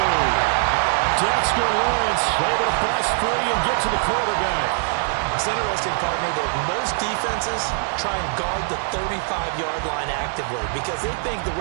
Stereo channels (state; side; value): silent; left; digital silence